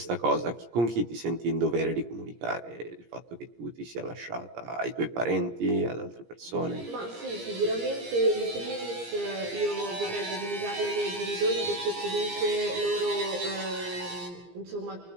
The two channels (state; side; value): late; left; 17 ms